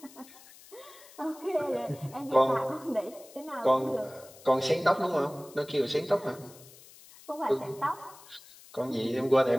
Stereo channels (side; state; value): left; noise; hiss, 21 dB below the sound